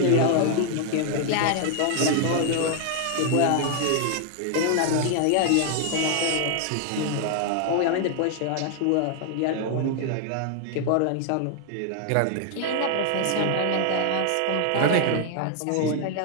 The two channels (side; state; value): both; different; correlation 0.00